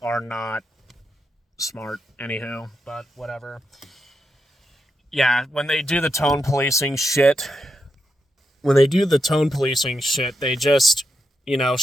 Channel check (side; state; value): both; normal; correlation 0.85